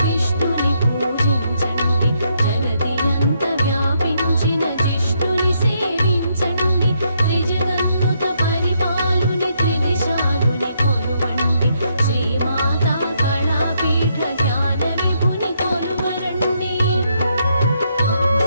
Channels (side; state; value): both; inverted; correlation -0.75